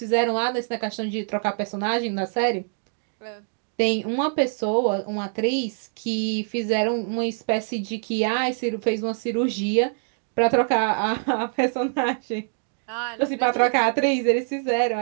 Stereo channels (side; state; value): left; silent; digital silence